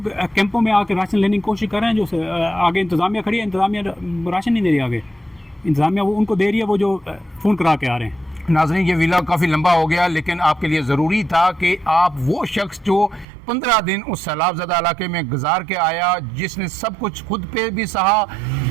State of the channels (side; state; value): left; drops out; at 13.2 s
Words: कैंपों में आकर राशन लेने की कोशिश कर रहे हैं, जो आगे इंतज़ामिया खड़ी है, इंतज़ामिया राशन नहीं दे रही, आगे इंतज़ामिया वो उनको दे रही है, वो जो फ़ोन करा के आ रहे हैं। नाज़रीन ये वीडियो काफ़ी लंबा हो गया, लेकिन आपके लिए ज़रूरी था कि आप वो शख्स जो 15 दिन उस सैलाबज़दा इलाके में गुजार के आया, जिसने सब कुछ खुद पे भी सहा,